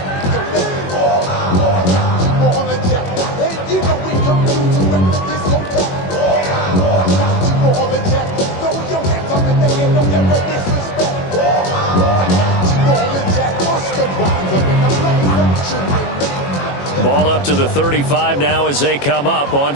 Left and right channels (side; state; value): right; late; 21 ms